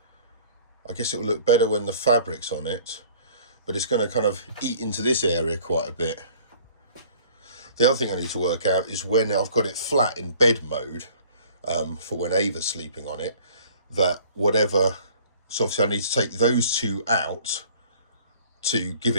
I guess it will look better when the fabric's on it, but it's going to kind of eat into this area quite a bit. The other thing I need to work out is when I've got it flat in bed mode, for when Ava's sleeping on it, that whatever, so obviously I need to take those two out to give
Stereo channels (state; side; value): inverted; both; correlation -0.52